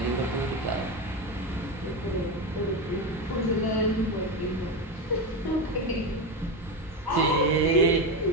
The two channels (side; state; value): both; normal; correlation 0.16